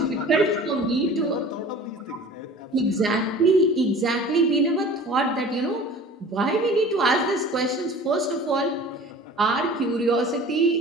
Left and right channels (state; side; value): normal; both; correlation 0.43